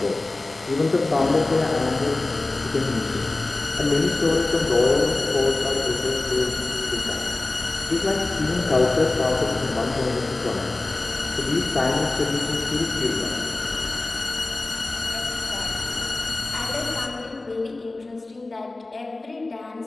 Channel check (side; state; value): right; quieter; 3.1 dB